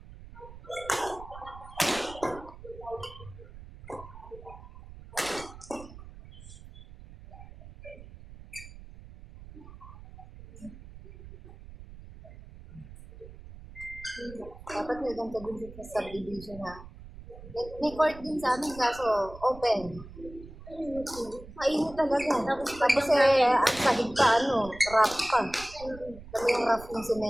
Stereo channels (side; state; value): right; noise; rumble, 16 dB below the sound